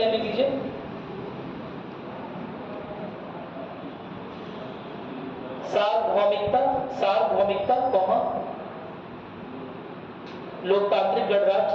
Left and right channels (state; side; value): identical; both; correlation 1.00